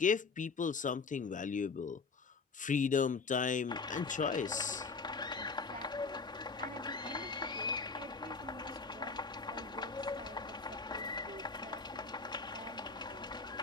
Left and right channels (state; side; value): quieter; right; 4.6 dB